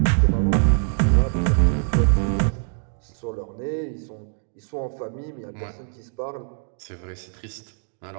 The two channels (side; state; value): left; silent; 63 dB below the other